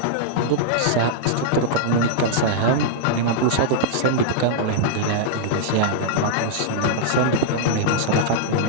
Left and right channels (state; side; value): different; both; correlation -0.02